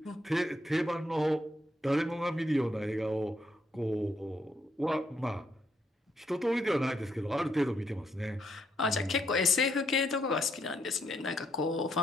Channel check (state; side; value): normal; both; correlation 0.75